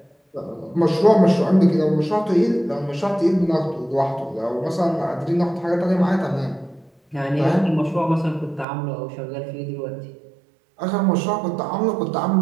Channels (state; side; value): drops out; left; at 8.7 s